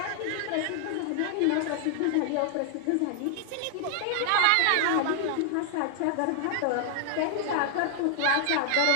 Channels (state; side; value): different; both; correlation 0.00